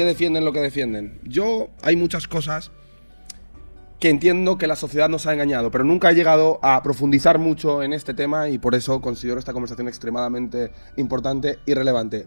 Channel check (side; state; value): both; inverted; correlation -1.00